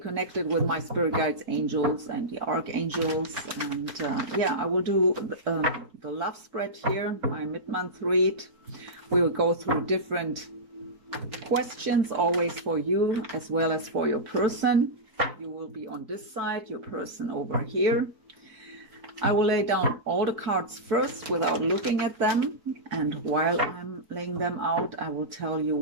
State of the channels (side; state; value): left; late; 4.7 ms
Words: with my spirit guides, angels, and the archangels. And I will do the love spread here, my mid-month read. We will go through different questions, always for you as well as for your person. You will be on this side, your person over here. I will lay down all the cards first without looking at them. And while I'm laying them out, I will tell you